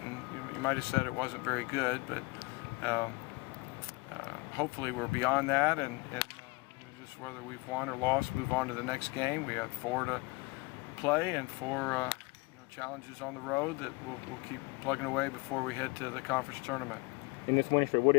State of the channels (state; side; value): quieter; right; 26.2 dB